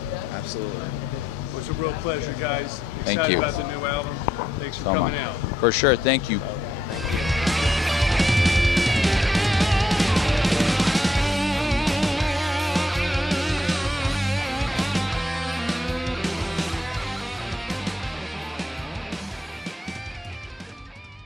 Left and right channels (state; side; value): normal; both; correlation 0.76